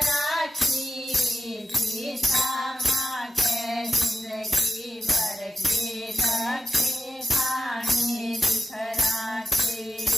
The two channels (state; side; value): normal; both; correlation 0.93